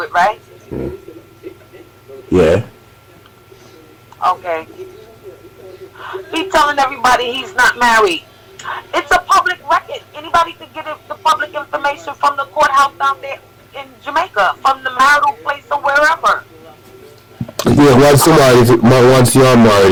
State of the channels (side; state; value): both; identical; correlation 1.00